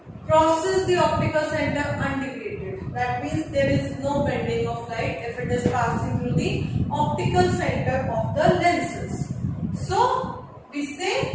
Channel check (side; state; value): both; identical; correlation 1.00